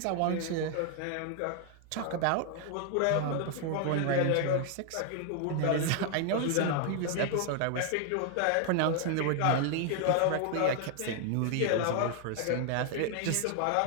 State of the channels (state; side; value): different; both; correlation 0.00